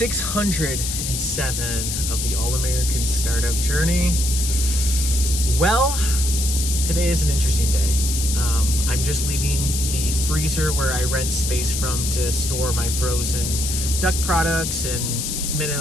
of the All-American Startup Journey. Well, today is an interesting day. I'm just leaving the freezer where I rent space from to store my frozen duck products and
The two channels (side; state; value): left; noise; hiss, 3 dB below the sound